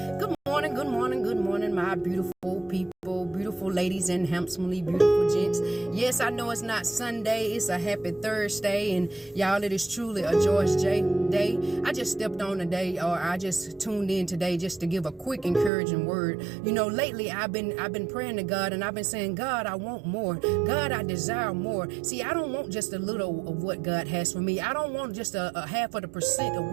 Good morning, good morning, good morning, my beautiful people, beautiful ladies and handsomely beautiful gents. Yes, I know it's not Sunday, it's a happy Thursday, and y'all, it is truly a George J day. I just stepped on today, or I just tuned in today just to give a quick encouraging word. You know, lately I've been praying to God, and I've been saying, God, I want more. God, I desire more. See, I don't want just a little of what God has for me. I don't want just a half of the percent of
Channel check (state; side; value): drops out; left; at 15.7 s